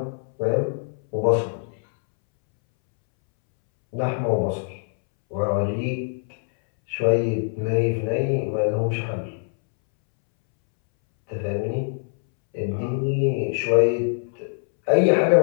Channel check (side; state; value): right; silent; 63 dB below the other